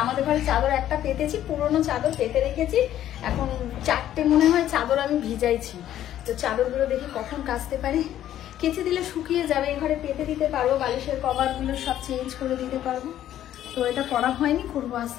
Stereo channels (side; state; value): right; quieter; 11.9 dB